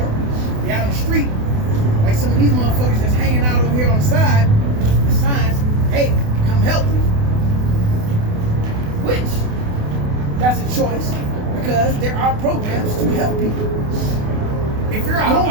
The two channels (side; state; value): left; late; 28 ms